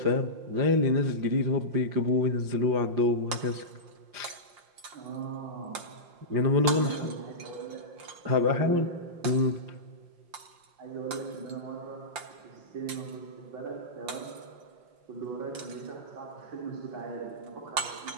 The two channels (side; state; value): left; late; 5.7 ms